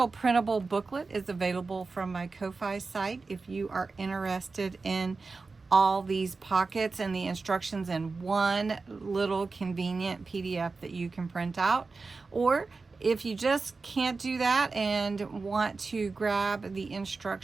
printable booklet is available from my Ko-Fi site if you are interested in all these pockets and the instructions in one little convenient PDF that you can print out. Or if you just can't do that and want to grab the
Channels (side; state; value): left; quieter; 4.1 dB